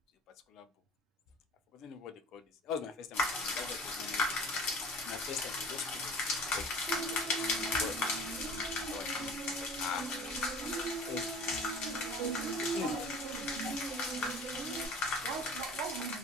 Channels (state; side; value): normal; both; correlation 0.44